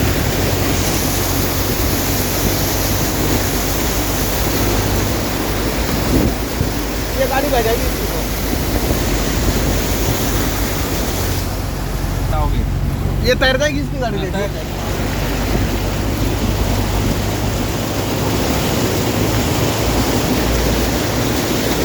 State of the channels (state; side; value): identical; both; correlation 1.00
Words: ये गाड़ी बह जाएगी इसकी तो। होगी, ये तैर जाएगी इसकी गाड़ी, देखिए।